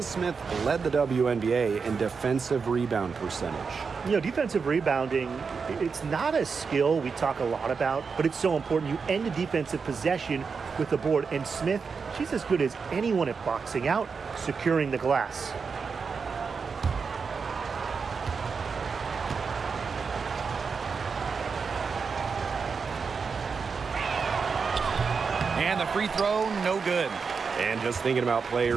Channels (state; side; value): quieter; left; 5.3 dB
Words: Smith led the WNBA in defensive rebound percentage. You know, defensive rebounding, it's not a skill we talk a lot about, but it's so important. You end a defensive possession with the board. And Smith, she's as good as anyone at boxing out, securing the glass. And the free throw, no good. And just thinking about